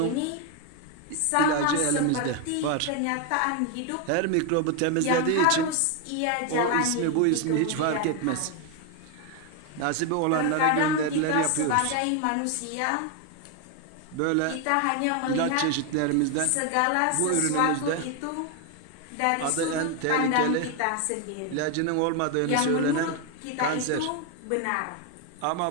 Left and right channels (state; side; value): different; both; correlation 0.01